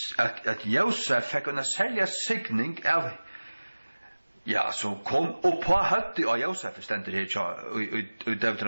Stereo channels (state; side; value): inverted; both; correlation -1.00